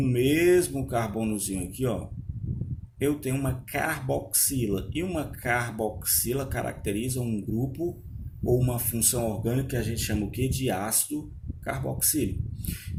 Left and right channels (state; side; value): identical; both; correlation 1.00